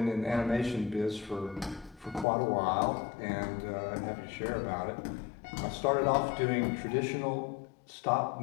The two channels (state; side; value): drops out; right; at 2.2 s